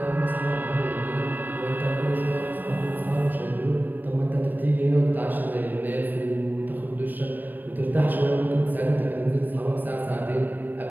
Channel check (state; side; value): late; left; 0.089 ms